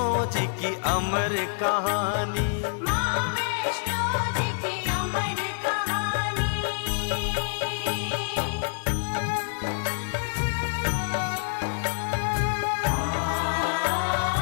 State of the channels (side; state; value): right; silent; digital silence